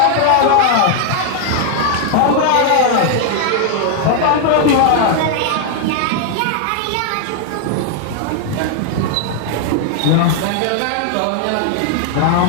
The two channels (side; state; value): both; different; correlation 0.00